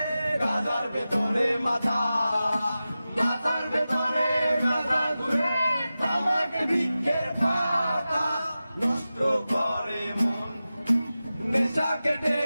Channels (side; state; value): both; inverted; correlation -0.94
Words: গাঁজার ভেতরে মাথা, মাথার ভেতরে গাঁজা ঘুরে, তামাক বৃক্ষের পাতা নষ্ট করে মন। নেশা কেটে